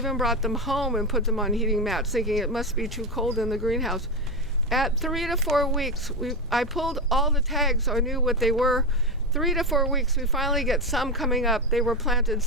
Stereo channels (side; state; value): both; normal; correlation 0.13